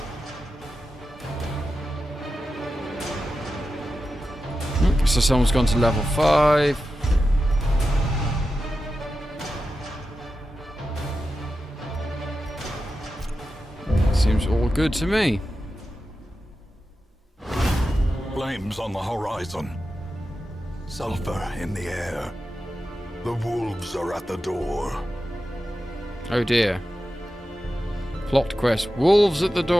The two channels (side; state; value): both; normal; correlation 0.91